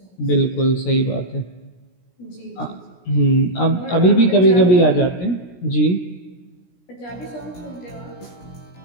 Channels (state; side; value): late; right; 17 ms